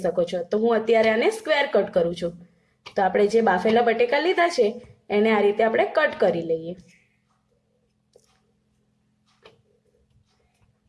શકો છો। તો હું અત્યારે આને સ્ક્વેર કટ કરું છું। તો આપણે જે બાફેલા બટેકા લીધા છે એને આ રીતે આપણે કટ કરી લઈએ।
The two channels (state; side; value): identical; both; correlation 1.00